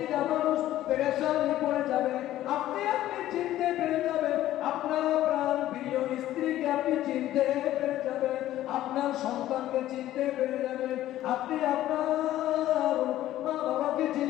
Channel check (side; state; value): right; quieter; 13.8 dB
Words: মানুষ পেরেশানি পড়ে যাবে। আপনি চিনতে পেরে যাবেন, আপনার প্রাণ প্রিয় স্ত্রীকে আপনি চিনতে পেরে যাবেন, আপনার সন্তানকে চিনতে পেরে যাবেন, আপনি আপনার মা বাবাকে